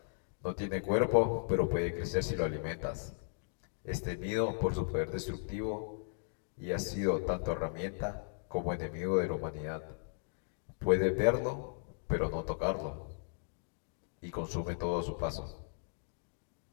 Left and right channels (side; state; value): right; silent; digital silence